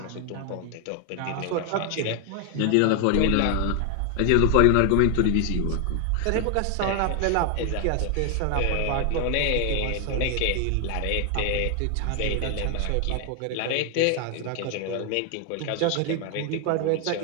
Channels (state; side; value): different; both; correlation 0.00